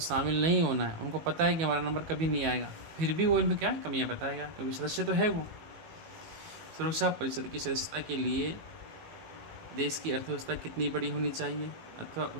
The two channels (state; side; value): late; left; 18 ms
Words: शामिल नहीं होना है, उनको पता है कि हमारा नंबर कभी नहीं आएगा, फिर भी वो इनमें क्या है, कमियां बताएगा, क्योंकि सदस्य तो है वो। सुरक्षा परिषद की सदस्यता के लिए देश की अर्थव्यवस्था कितनी बड़ी होनी चाहिए अथवा